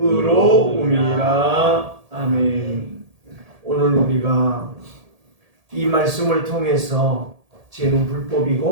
아멘. 오늘 우리가 이 말씀을 통해서 죄는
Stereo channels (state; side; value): late; left; 1.7 ms